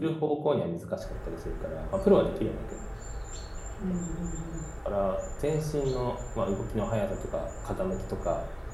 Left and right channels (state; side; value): identical; both; correlation 1.00